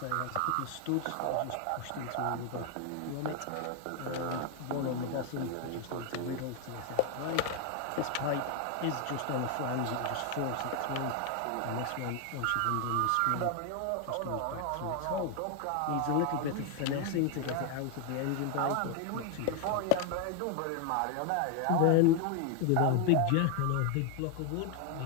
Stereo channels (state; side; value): different; both; correlation 0.01